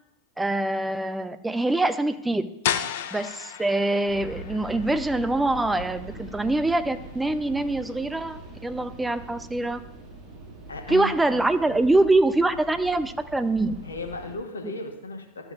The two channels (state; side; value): normal; both; correlation 0.84